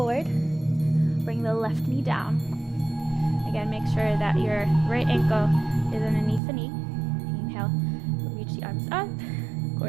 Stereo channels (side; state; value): left; drops out; at 6.4 s